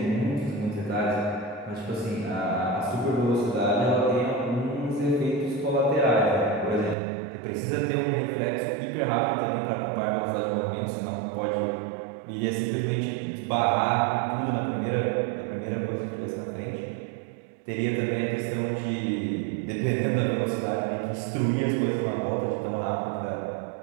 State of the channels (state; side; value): drops out; left; at 7.0 s